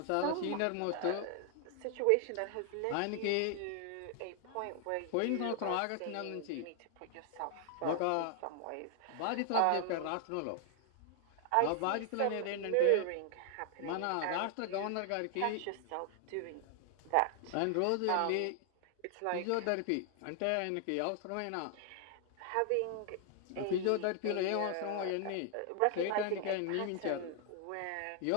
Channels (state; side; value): different; both; correlation 0.00